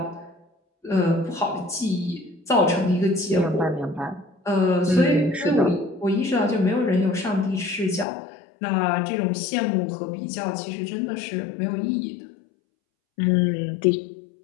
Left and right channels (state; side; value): drops out; right; at 8.1 s